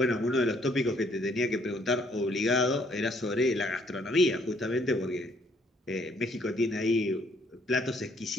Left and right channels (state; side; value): normal; both; correlation 0.66